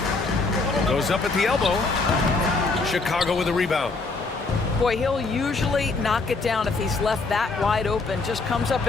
Goes up at the elbow. Chicago with a rebound. Boy, he'll usually knock it down if he's left that wide open. Just comes up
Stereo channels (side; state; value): right; quieter; 3.8 dB